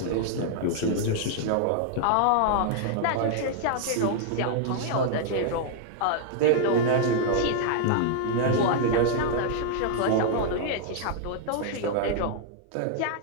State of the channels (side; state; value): both; different; correlation -0.01